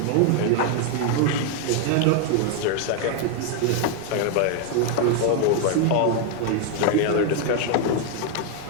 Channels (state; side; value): different; both; correlation 0.00